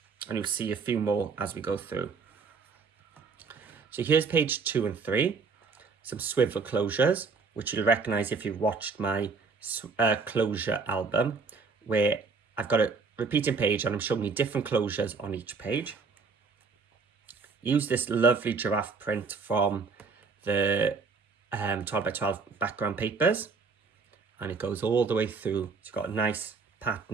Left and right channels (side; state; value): left; quieter; 4.8 dB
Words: And you'll see a few more as we go through. So here's page 2 and 3. Some swivel closures, which you'll recognize if you've watched my closure album, where I've got a repeating page and I'm showing you different closures on each page. Use this lovely giraffe print from the 12 by 12 background papers, and it goes all the way through. It's got a nice